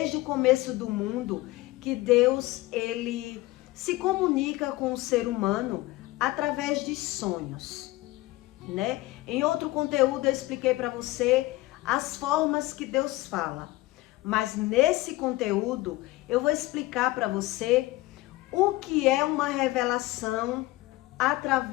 o começo do mundo, que Deus, ele se comunica com o ser humano através de sonhos, né? Em outro conteúdo eu expliquei para você as formas que Deus fala. Mas nesse conteúdo eu vou explicar para você o que é uma revelação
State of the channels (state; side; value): quieter; right; 18.9 dB